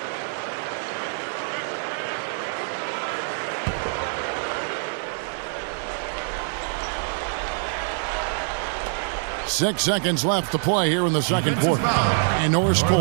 Six seconds left to play here in the second quarter. And Norris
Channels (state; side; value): silent; left; digital silence